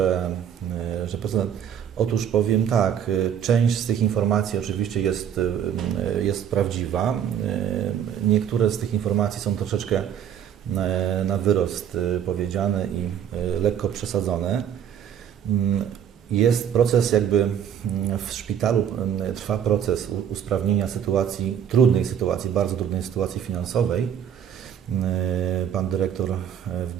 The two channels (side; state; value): left; quieter; 8.9 dB